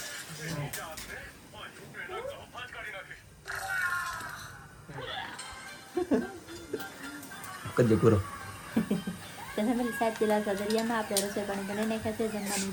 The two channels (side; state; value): both; identical; correlation 1.00